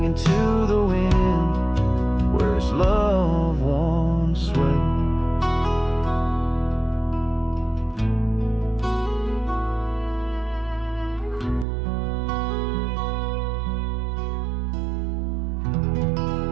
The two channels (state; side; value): drops out; left; at 11.7 s